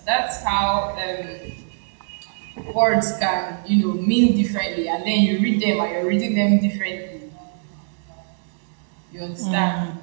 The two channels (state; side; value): silent; left; digital silence